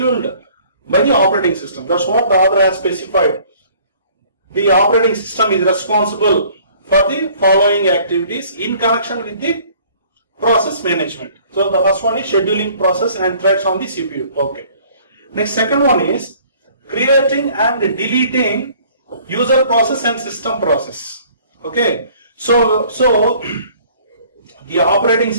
by the operating system. That's what the author has specified. The operating system is responsible for the following activities in connection with the process management. So the first one is scheduling process and threads on the CPU. Okay. Next, second one is creating and deleting user process and system process. Okay, so the operating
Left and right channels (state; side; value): inverted; both; correlation -0.55